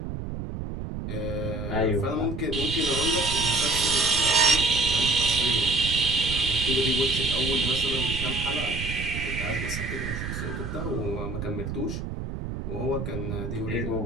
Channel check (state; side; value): noise; right; rumble, 6 dB below the sound